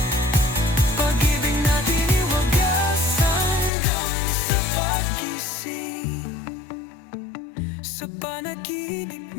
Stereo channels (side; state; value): right; drops out; at 3.7 s